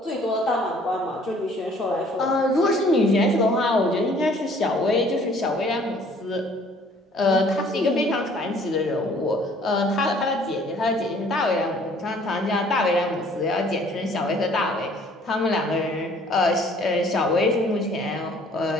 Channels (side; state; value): both; normal; correlation 0.57